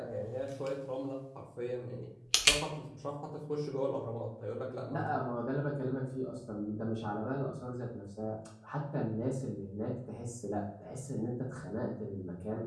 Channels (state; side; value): identical; both; correlation 1.00